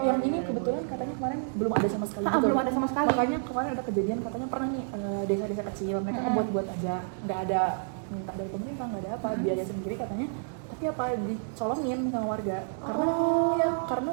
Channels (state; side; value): silent; left; digital silence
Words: yang ini kebetulan katanya kemarin belum ada sama sekali. Belum ada sama sekali. Makanya kemarin ada kejadian katanya pernah nih desa-desa kecil mereka buat aja, nggak ada minta dari pemerintah, nggak ada apa, biaya sendiri katanya. Tapi apa dicolongin sama warga karena